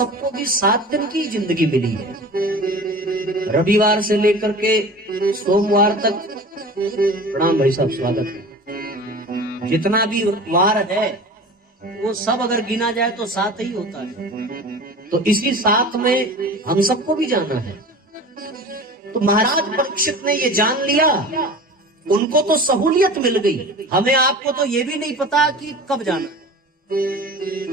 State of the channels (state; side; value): normal; both; correlation 0.37